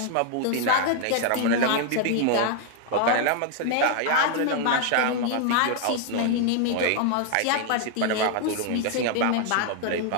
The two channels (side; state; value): both; different; correlation 0.00